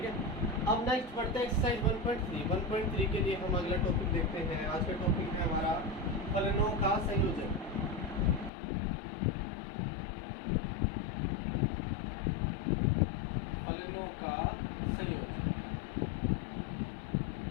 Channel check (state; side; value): drops out; right; at 8.5 s